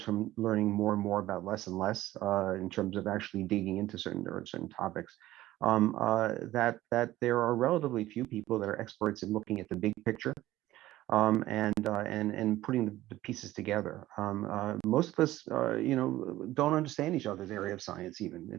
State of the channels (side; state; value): left; quieter; 15.6 dB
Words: learning more and more about less and less in terms of actually digging into certain topics. That there are relatively few people that are experts in looking at the big picture and putting the pieces together. Most of us, you know, don't understand each other's area of science